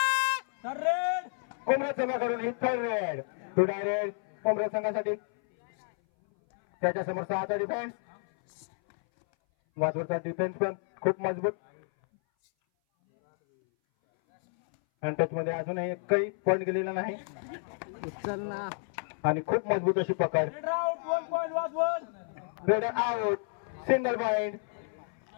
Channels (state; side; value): silent; right; 58 dB below the other